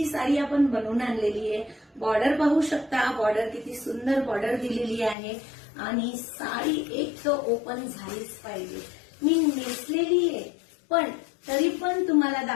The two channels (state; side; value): drops out; right; at 5.2 s